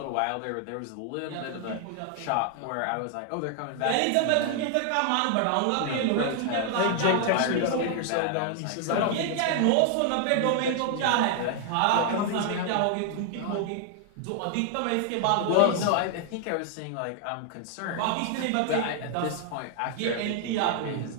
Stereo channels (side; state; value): both; different; correlation 0.00